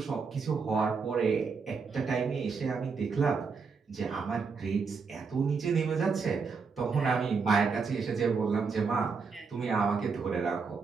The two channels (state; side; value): quieter; left; 5.1 dB